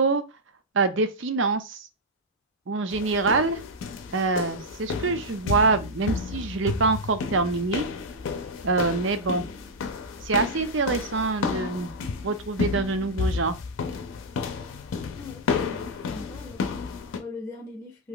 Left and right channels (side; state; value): both; normal; correlation -0.05